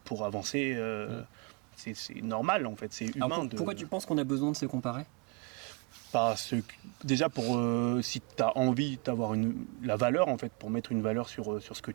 pour avancer. C'est normal en fait, c'est humain. Alors pourquoi tu penses qu'on a besoin de se comparer? Parce que, déjà pour si tu as envie d'avoir la valeur en fait, pour mettre une valeur sur ce que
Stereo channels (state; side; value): quieter; left; 30.9 dB